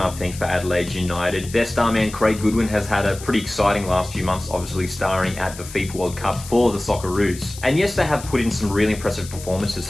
think, for Adelaide United. Their star man, Craig Goodwin, has had a pretty exciting last few months, obviously starring at the FIFA World Cup for the Socceroos. And yes, they have put in some really impressive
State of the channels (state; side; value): noise; left; hiss, 15 dB below the sound